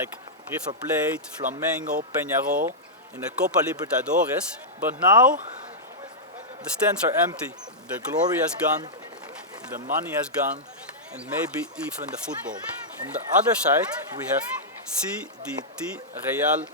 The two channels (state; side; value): normal; both; correlation -0.10